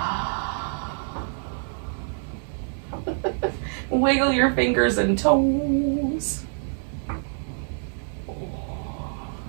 Wiggle your fingers and toes.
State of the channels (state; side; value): silent; left; digital silence